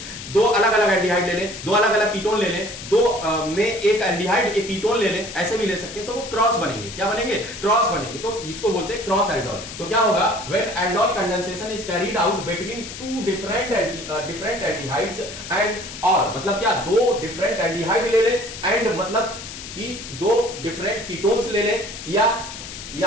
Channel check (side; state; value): left; noise; hiss, 11 dB below the sound